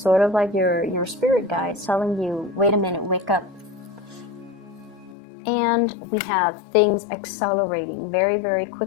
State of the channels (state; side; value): drops out; right; at 5.2 s